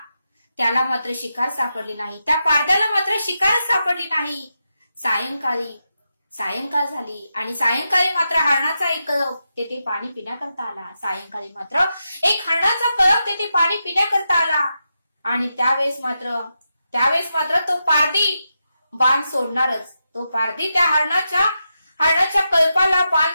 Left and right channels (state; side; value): inverted; both; correlation -0.87